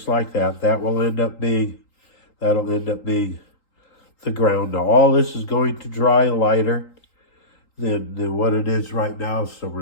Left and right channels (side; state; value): right; late; 3.8 ms